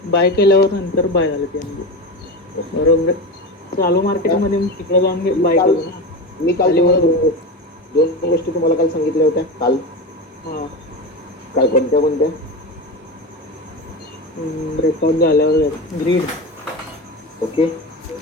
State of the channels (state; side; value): normal; both; correlation 0.22